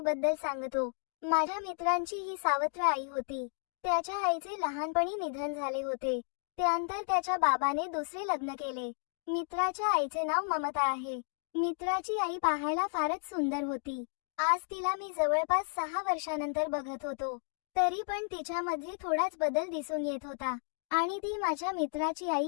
सांगतो। माझ्या मित्रांची ही सावत्र आई होती। त्याच्या आईचे लहानपणी निधन झाले होते। त्यानंतर त्याच्या बाबाने दुसरे लग्न केले। मित्राच्या आईचे नाव ममता आहे। मित्राची आई पाहायला फारच सुंदर होती। आज तिला मी जवळपास 6 वर्षानंतर बघत होतो, तरी पण तिच्यामध्ये थोडाच बदल दिसून येत होता आणि ती माझ्या मित्राची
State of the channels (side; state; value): right; silent; 56 dB below the other